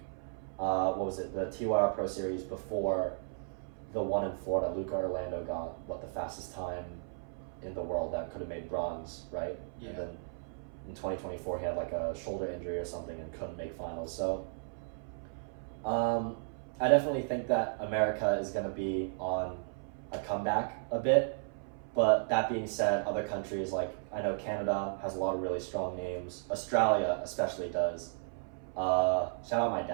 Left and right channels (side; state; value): left; silent; 55 dB below the other